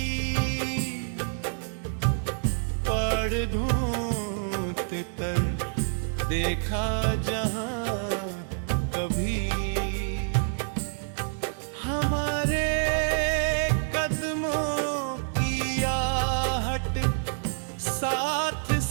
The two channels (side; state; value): left; silent; digital silence